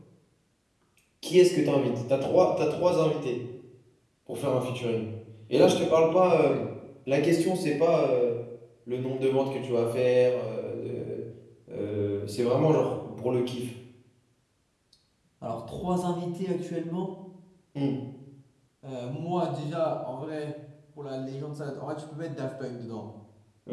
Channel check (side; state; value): both; identical; correlation 1.00